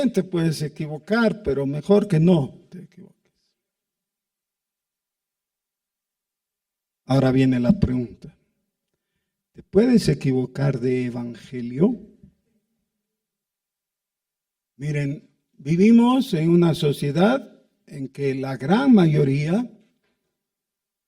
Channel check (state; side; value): identical; both; correlation 1.00